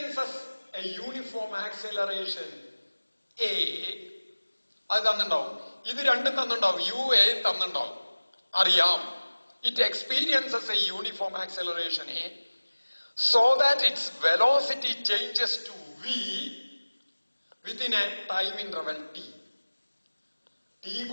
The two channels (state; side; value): inverted; both; correlation -1.00